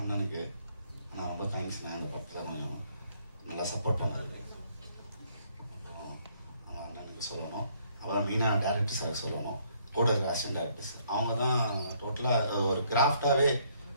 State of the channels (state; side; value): inverted; both; correlation -0.67